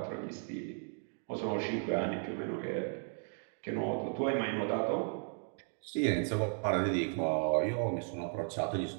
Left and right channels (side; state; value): left; silent; 54 dB below the other